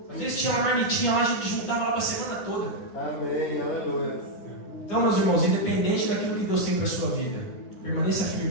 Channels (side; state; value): right; late; 10 ms